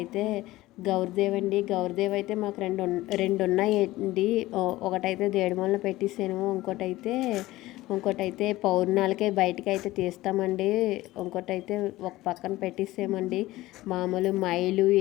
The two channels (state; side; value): quieter; right; 17.6 dB